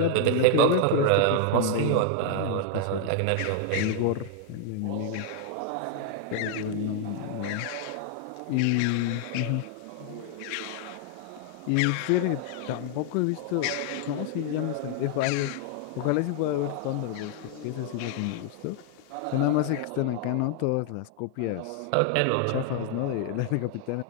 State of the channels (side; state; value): both; different; correlation 0.00